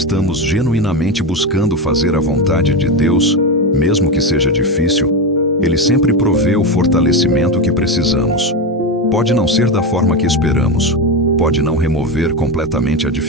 genuinamente buscando fazer a vontade de Deus, mesmo que seja difícil, Ele sempre provê o fortalecimento que precisamos. Pode não ser da forma que esperamos, pode não remover completamente a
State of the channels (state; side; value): normal; both; correlation 0.15